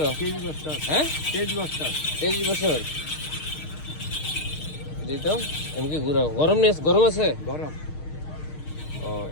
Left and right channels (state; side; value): late; right; 6.5 ms